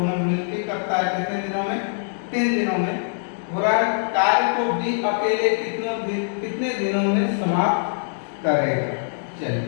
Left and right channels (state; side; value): silent; right; digital silence